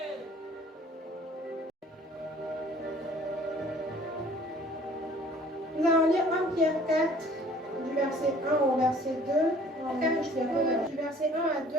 Nous allons lire 1 Pierre 4, du verset 1 au verset 2. En 4, du verset 1 à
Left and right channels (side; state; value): both; normal; correlation 0.53